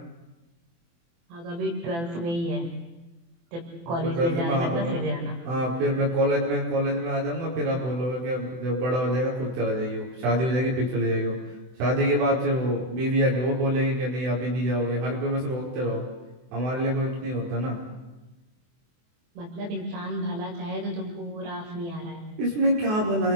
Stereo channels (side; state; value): left; late; 24 ms